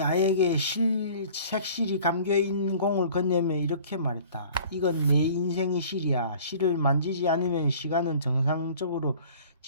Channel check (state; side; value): inverted; both; correlation -0.48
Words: 아에게 색실이 감겨있는 공을 건네며 이렇게 말했다. 이건 내 인생의 실이야. 실을 만지지 않으면 시간은 정상적으로